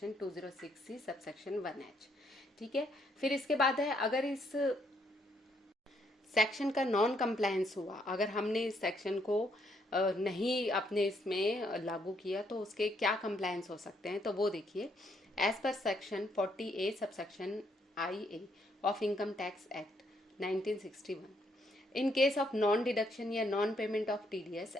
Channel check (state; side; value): normal; both; correlation 0.72